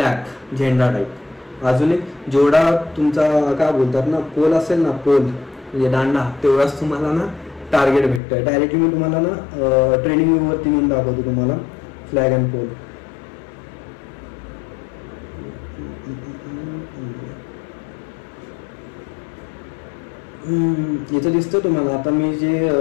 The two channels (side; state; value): right; drops out; at 8.2 s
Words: झेंडा टाईप. अजून एक जेवढा तुमचा काय बोलतात ना पोल असेल ना, पोल म्हणजे दांडा, तेवढाच तुम्हाला ना टार्गेट भेटतं. डायरेक्टली मी तुम्हाला ना ट्रेनिंग व्ह्यूवरती म्हणून दाखवतो तुम्हाला फ्लॅग अँड पोल. इथं दिसतं तुम्हाला. आता मी